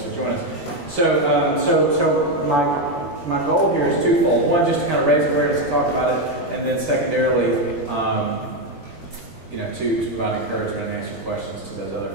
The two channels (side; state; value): right; late; 21 ms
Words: to join us. So my goal here is twofold. One, just to kind of raise awareness and talk about it, and then secondarily, to provide encouragement and answer questions to those other